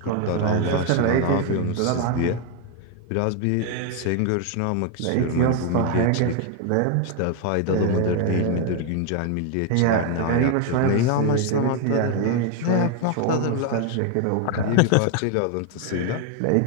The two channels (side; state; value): both; different; correlation 0.01